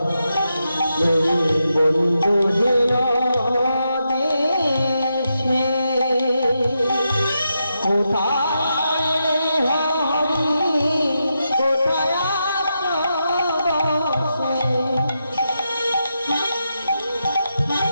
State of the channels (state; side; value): inverted; both; correlation -0.85